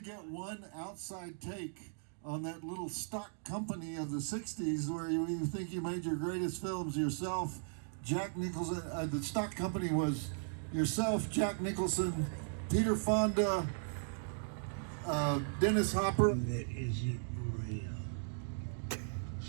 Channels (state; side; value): silent; left; digital silence